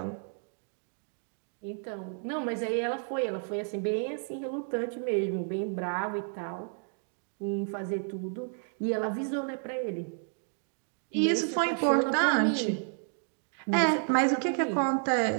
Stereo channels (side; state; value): left; silent; 57 dB below the other